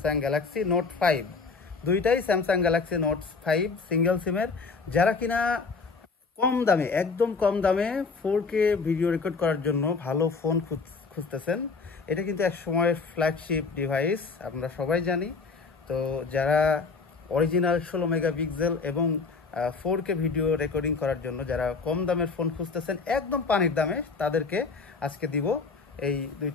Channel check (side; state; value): right; quieter; 4.6 dB